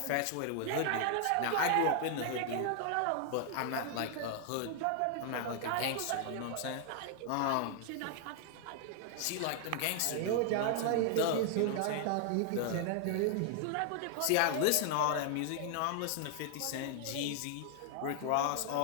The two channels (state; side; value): different; both; correlation 0.00